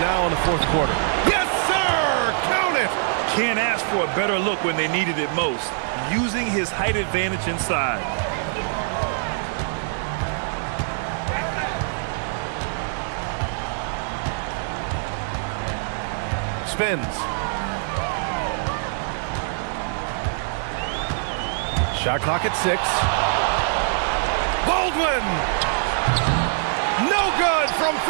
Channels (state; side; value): silent; left; digital silence